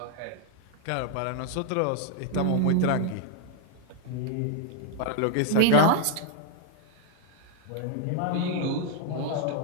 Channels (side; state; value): both; different; correlation 0.00